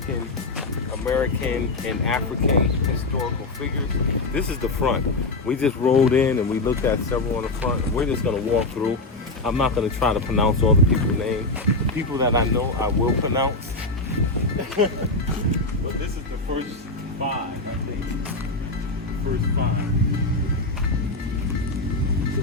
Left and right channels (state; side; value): quieter; right; 3.0 dB